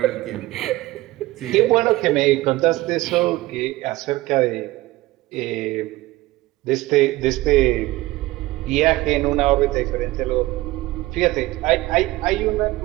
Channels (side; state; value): left; quieter; 18.6 dB